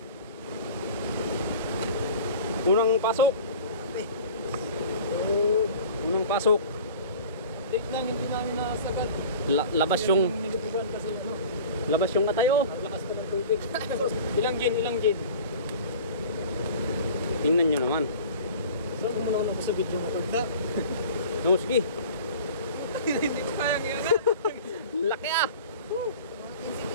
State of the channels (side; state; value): both; inverted; correlation -0.41